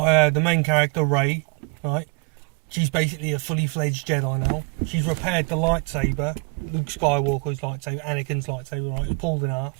the main character, Rey, right? She's basically a fully fledged Jedi now. She's repaired the lightsaber, Luke Skywalker's lightsaber, Anakin's lightsaber, right? It was pulled in half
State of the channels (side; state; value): left; quieter; 31.4 dB